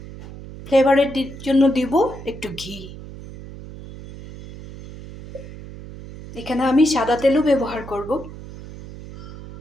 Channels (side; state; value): right; noise; hum, 14 dB below the sound